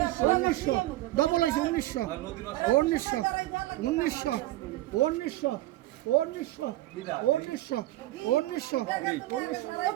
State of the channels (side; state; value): left; quieter; 16.7 dB